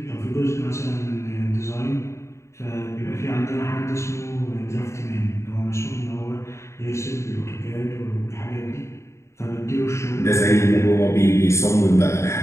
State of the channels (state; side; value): late; right; 0.14 ms